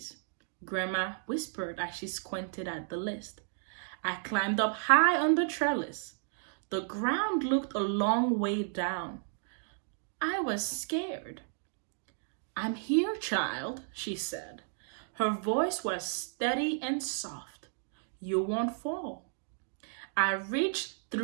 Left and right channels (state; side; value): silent; left; digital silence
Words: Grandma whispered as she squinted at the list. I climbed up high on the trellis. The ground looked a long way down. I was scared. I'm here, child, she said. Her voice was steady and soft. You won't fall. I reached